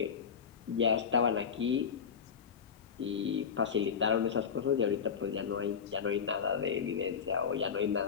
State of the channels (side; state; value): right; quieter; 6.8 dB